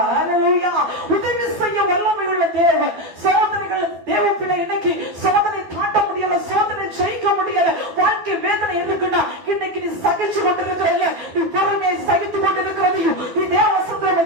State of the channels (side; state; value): left; late; 12 ms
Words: அல்லேலூயா. உதவி செய்ய வல்லமை உள்ள தேவன். சோதனைகள் தேவ பிள்ளை இன்னைக்கு சோதனை தாண்ட முடியல, சோதனை ஜெயிக்க முடியல, வாழ்க்கை வேதனை இருக்குன்னா இன்னைக்கு நீ சகிச்சு கொண்டிருக்கிற, நீ பொறுமையை சகித்து கொண்டிருக்கிறதையும் நீ தேவ